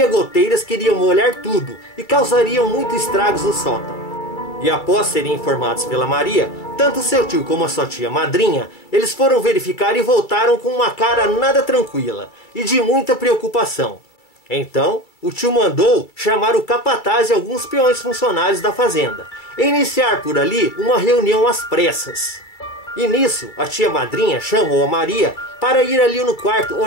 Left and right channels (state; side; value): late; right; 2.3 ms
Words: goteiras que iriam molhar tudo e causariam muitos estragos no sótão. E após serem informados pela Maria, tanto seu tio como a sua tia madrinha, eles foram verificar e voltaram com uma cara nada tranquila e de muita preocupação. Então, o tio mandou chamar o capataz e alguns peões funcionários da fazenda e iniciar por ali uma reunião às pressas. E nisso, a tia madrinha chamou a Maria para ir ali no quarto